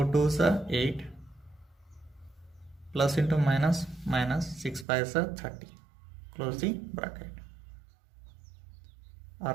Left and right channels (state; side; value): drops out; left; at 4.9 s